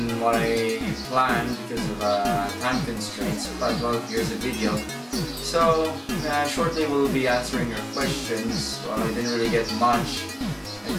what I planned because of time constraints, but well, here's the video. So, shortly we'll be answering your questions. Well, I didn't really get much. I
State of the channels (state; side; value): identical; both; correlation 1.00